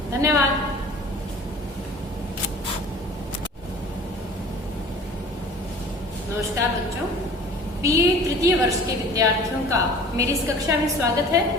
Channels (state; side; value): normal; both; correlation 0.45